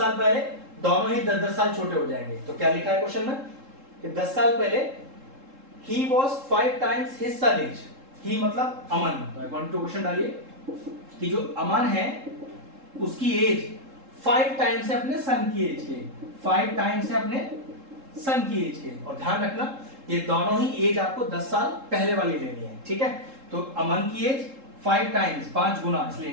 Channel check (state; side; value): late; left; 3.7 ms